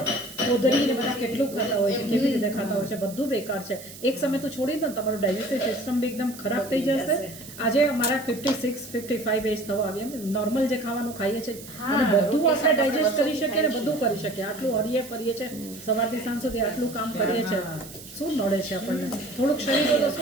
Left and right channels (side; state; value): right; noise; hiss, 16 dB below the sound